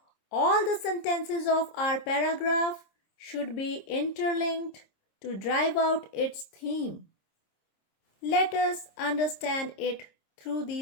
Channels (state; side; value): late; right; 26 ms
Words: All the sentences of our paragraph should be interlinked to drive out its theme. Let us understand it through